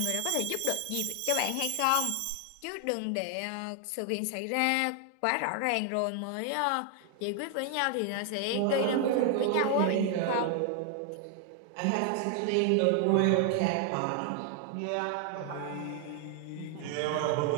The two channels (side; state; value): both; different; correlation 0.00